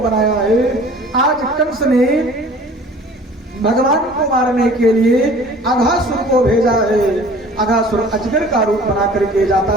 बनाया है। आज कंस ने भगवान को मारने के लिए अघासुर को भेजा है। अघासुर अजगर का रूप बना करके जाता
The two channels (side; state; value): both; normal; correlation 0.47